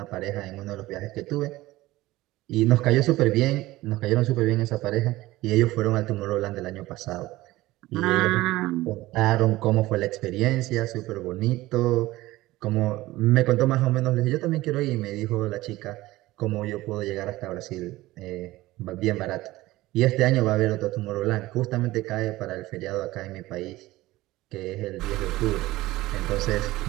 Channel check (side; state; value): left; quieter; 17.8 dB